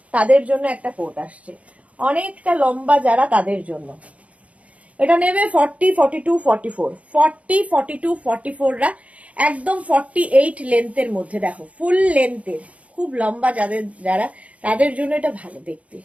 তাদের জন্য একটা কোট আসছে, অনেকটা লম্বা যারা তাদের জন্য এটা নেবে 40, 42, 44, 40, 42, 44রা একদম 48 লেন্থের মধ্যে। দেখো ফুল লেন্থের, খুব লম্বা যারা তাদের জন্য এটা ভালো দেখতে,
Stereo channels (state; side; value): late; left; 0.066 ms